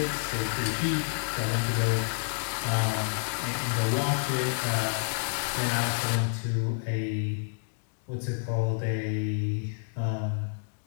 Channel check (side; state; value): right; silent; digital silence